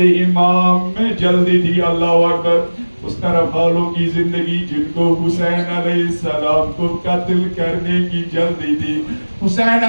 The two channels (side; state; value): both; inverted; correlation -1.00